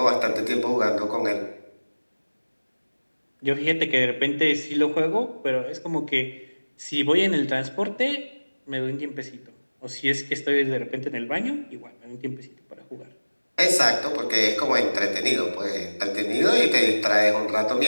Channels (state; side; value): inverted; both; correlation -1.00